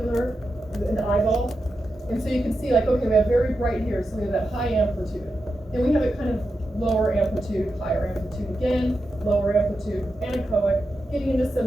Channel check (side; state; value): both; normal; correlation 0.89